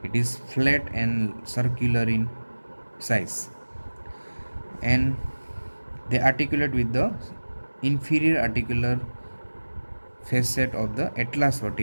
It is flat and circular in size, and they articulate with the inferior articular facet of the atlas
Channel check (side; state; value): both; inverted; correlation -1.00